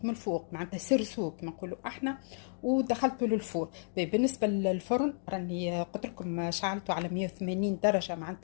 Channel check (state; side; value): silent; right; digital silence